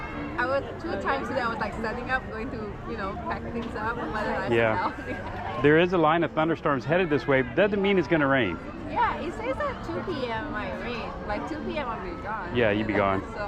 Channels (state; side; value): identical; both; correlation 1.00